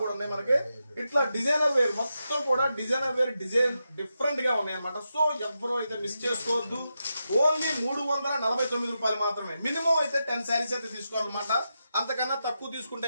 కూడా ఉన్నాయి మనకి. ఇట్లా డిజైనర్ వేర్ మొత్తం కూడా డిజైన్ డిఫరెంట్ గా ఉన్నాయి అనమాట. సో ఎవరో అయితే మిస్ చేసుకోవద్దు. ఓన్లీ 349 రూపాయలు మాత్రమే. మినిమం అయితే 10 శారీస్ అయితే తీసుకోవాలన్నమాట. అంతకన్నా తక్కువ తీసుకుంటే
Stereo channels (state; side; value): inverted; both; correlation -0.88